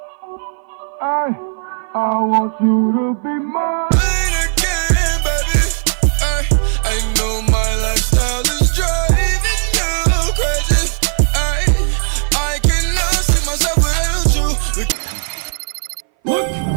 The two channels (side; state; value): left; silent; 60 dB below the other